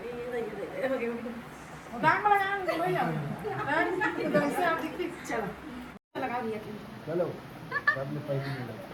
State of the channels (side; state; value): both; identical; correlation 1.00